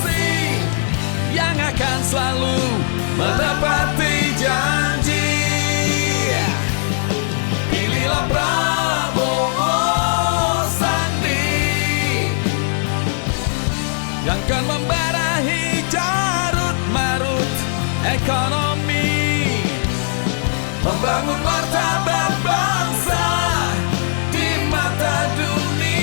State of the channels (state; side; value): silent; right; digital silence